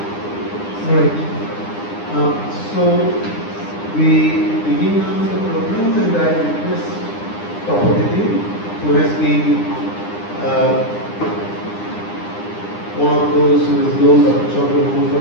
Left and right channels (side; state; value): right; late; 9.8 ms